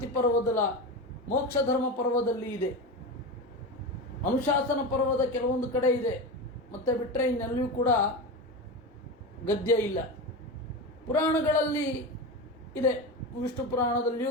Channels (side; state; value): both; normal; correlation 0.22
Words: ಪರ್ವದ ಮೋಕ್ಷ ಧರ್ಮ ಪರ್ವದಲ್ಲಿ ಇದೆ, ಅನುಶಾಸನ ಪರ್ವದ ಕೆಲವೊಂದು ಕಡೆ ಇದೆ. ಮತ್ತೆ ಬಿಟ್ಟರೆ ಇನ್ನೆಲ್ಲಿಯೂ ಕೂಡ ಗದ್ಯ ಇಲ್ಲ. ಪುರಾಣಗಳಲ್ಲಿ ಇದೆ, ವಿಷ್ಣು ಪುರಾಣದಲ್ಲಿಯೂ